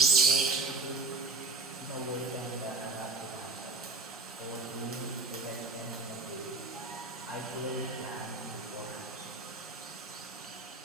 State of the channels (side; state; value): left; quieter; 3.7 dB